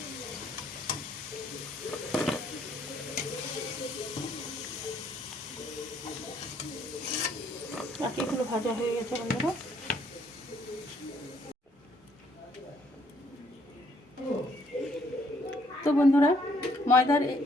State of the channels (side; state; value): both; normal; correlation 0.66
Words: বাকিগুলো ভাজা হয়ে গেছে বন্ধুরা। তো বন্ধুরা